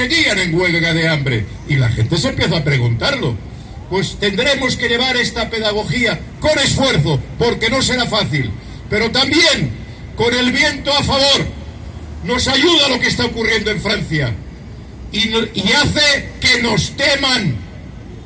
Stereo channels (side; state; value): both; identical; correlation 1.00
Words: en huelga de hambre? Y la gente se empieza a preguntarlo. Pues tendremos que llevar esta pedagogía con esfuerzo, porque no será fácil, pero también con el viento a favor. Nos ayuda lo que está ocurriendo en Francia y hace que nos teman.